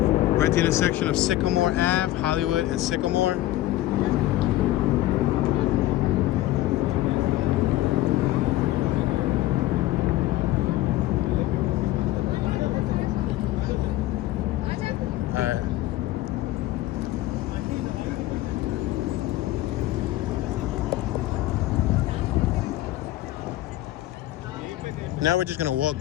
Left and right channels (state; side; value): quieter; right; 15.6 dB